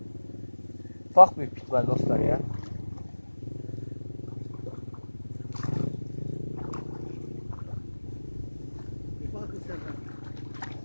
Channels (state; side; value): inverted; both; correlation -1.00